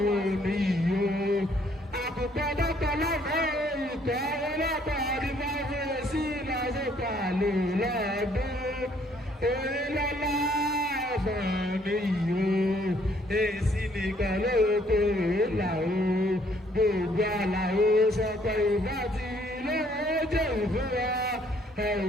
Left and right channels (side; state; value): both; normal; correlation 0.65